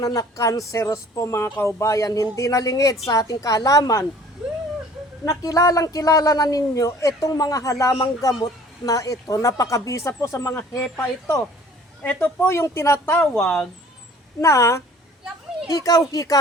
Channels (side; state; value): both; normal; correlation 0.51